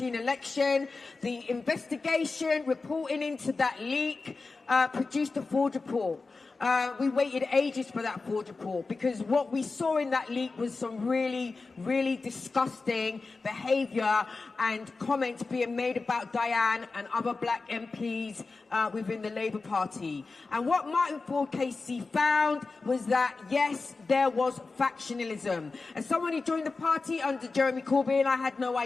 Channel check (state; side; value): quieter; right; 3.9 dB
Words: election, the investigation reporting into that leak produced a Ford report. We waited ages for that Ford report because what we saw in that leak was some really, really disgusting behaviour and comments being made about Diane and other black MPs within the Labour Party. And what Martin Ford KC found was that, yes, there was factionalism. As someone who joined the party under Jeremy Corbyn, I had no